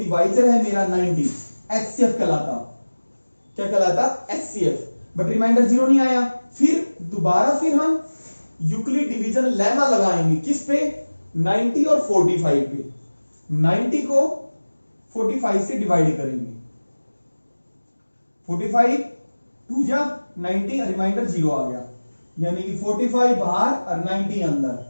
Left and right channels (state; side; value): inverted; both; correlation -1.00